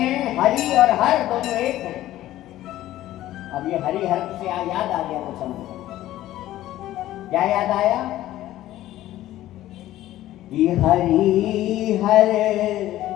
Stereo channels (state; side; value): quieter; right; 14.4 dB